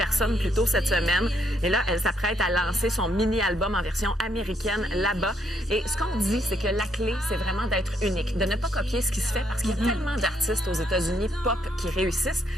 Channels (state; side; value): normal; both; correlation 0.73